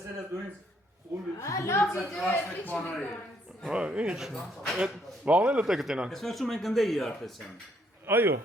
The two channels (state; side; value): normal; both; correlation 0.69